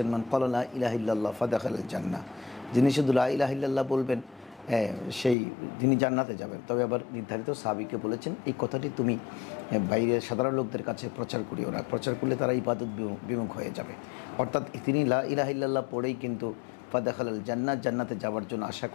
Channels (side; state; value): right; drops out; at 5.4 s